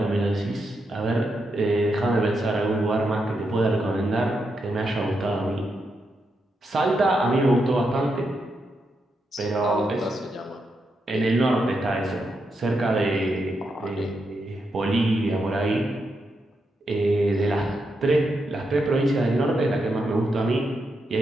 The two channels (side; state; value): both; normal; correlation 0.83